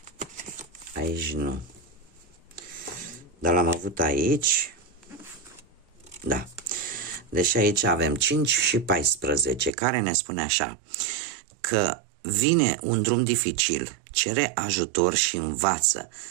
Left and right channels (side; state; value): left; drops out; at 9.7 s